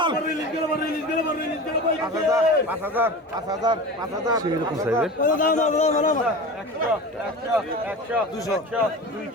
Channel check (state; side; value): normal; both; correlation 0.32